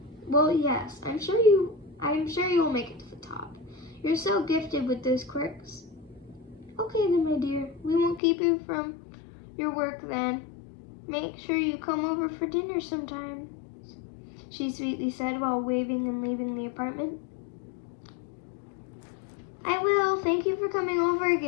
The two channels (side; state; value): right; drops out; at 8.2 s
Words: Well, yes, I'm sure you will make it to the top. You're so gifted with those quirks. Okay then, my dear. We won't keep you from your work then. Make sure you come over for dinner sometime, she sweetly said while waving and leaving the apartment. I will. Thank you for coming over